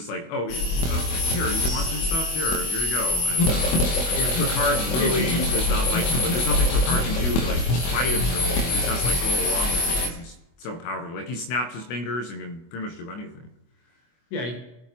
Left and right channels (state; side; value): late; right; 24 ms